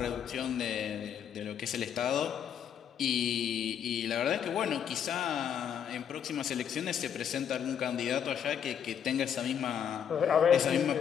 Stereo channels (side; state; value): right; quieter; 8.5 dB